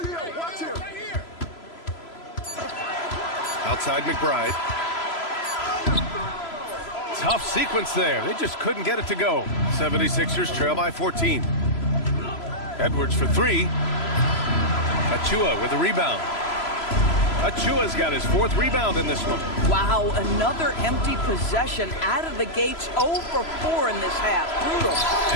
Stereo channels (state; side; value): late; right; 3.0 ms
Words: Outside McBride. Tough sequence there. They just couldn't get it to go. 76ers trail by 14. Edwards for 3. Achua with a rebound. Achua's got his 4th rebound in this one. Wow, another empty possession out of the gates. 0 for 4 in this half. Brutal.